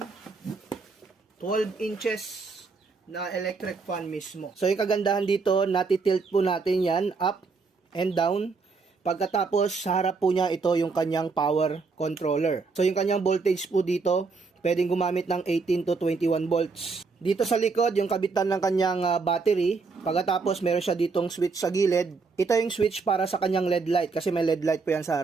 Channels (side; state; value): left; quieter; 4.5 dB